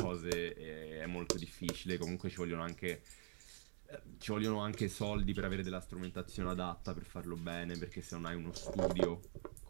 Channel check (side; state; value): left; silent; digital silence